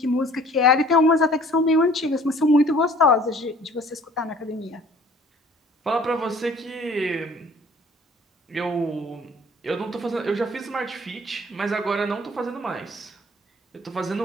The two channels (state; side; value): normal; both; correlation 0.52